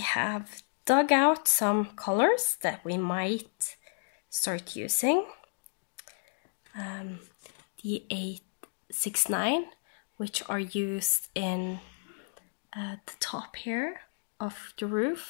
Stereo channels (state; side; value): silent; right; digital silence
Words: have dug out some colors that we might start using. The 869, which are used in the top here of the roof,